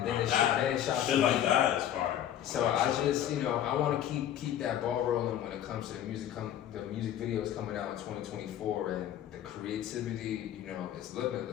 then it shot. Shit like that is fire. So I just, I want to keep that ball rolling when it comes to the music videos coming out in 2024, and the creativity, is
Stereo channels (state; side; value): quieter; right; 11.0 dB